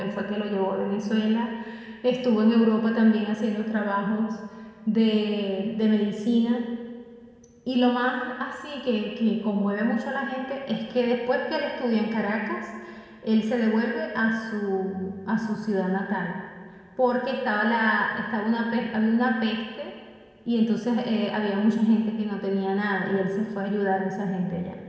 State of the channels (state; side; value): identical; both; correlation 1.00